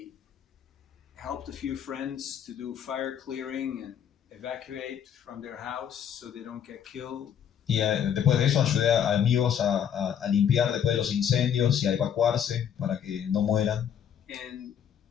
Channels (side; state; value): right; quieter; 8.8 dB